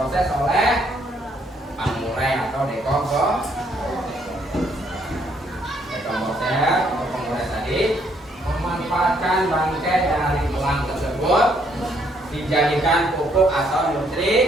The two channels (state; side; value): normal; both; correlation 0.69